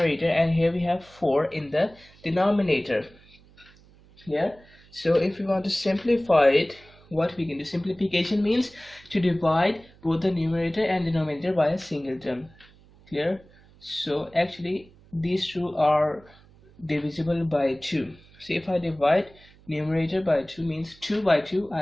and here we have 4 in the denominator. Clear? So if we want to simplify it, what we can do, simplification means to divide both the numerator and denominator by a single term. Clear? So actually these two are divisible by 2. So if I divide numerator by 2 means 2 by 2,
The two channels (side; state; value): right; noise; hum, 26 dB below the sound